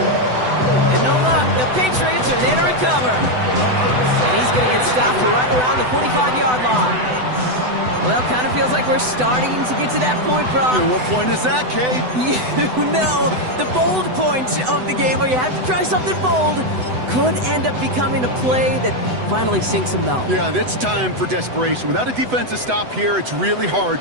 And no luck. The Patriots are there to recover. And he's going to get stopped right around the 45-yard line. Well, kind of feels like we're starting to get to that point, Brock. And what point is that, Kate? You know, the bold point of the game where you have to try something bold could end up becoming a play that finally sinks him, though. Yeah, it's time for desperation. Without a defensive stop here, it's really hard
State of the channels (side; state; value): left; late; 7.9 ms